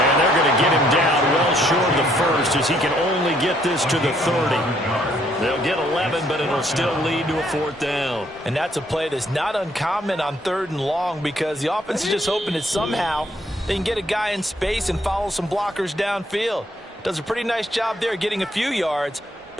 they're going to get him down well short of the first as he can only get this to the 30. They'll get 11, but it'll still lead to a 4th down. And that's a play that's not uncommon on 3rd and long because the offense is just hoping that somehow they can get a guy in space and follow some blockers downfield. Does a pretty nice job there getting a few yards,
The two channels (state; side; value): normal; both; correlation 0.68